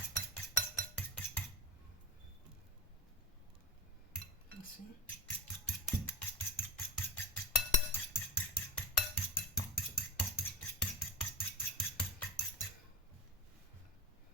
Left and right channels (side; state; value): both; normal; correlation 0.21